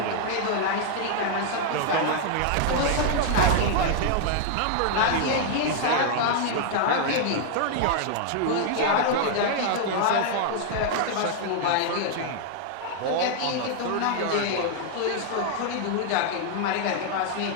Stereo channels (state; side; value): different; both; correlation 0.00